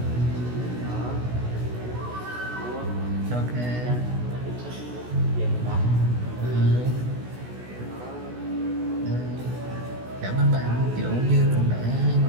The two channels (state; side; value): late; left; 16 ms